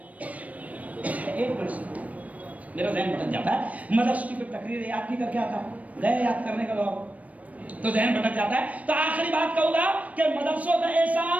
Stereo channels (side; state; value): left; late; 0.069 ms